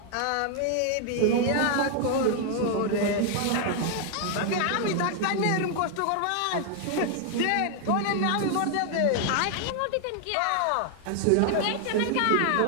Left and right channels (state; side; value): different; both; correlation 0.00